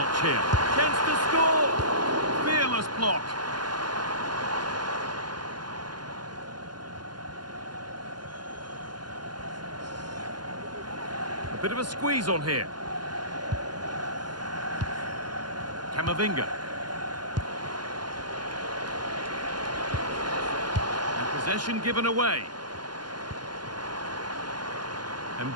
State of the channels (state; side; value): late; left; 0.71 ms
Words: here. Chance to score! Fearless block. A bit of a squeeze on here. Camavinga. And possession given away.